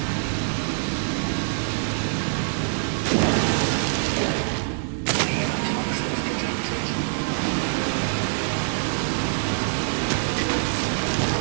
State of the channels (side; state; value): left; silent; digital silence